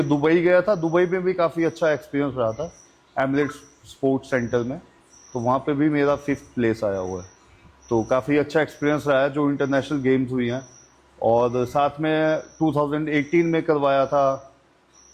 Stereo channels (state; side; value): identical; both; correlation 1.00